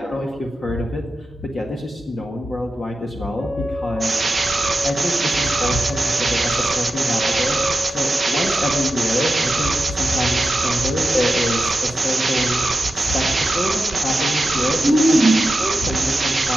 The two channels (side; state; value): both; normal; correlation 0.91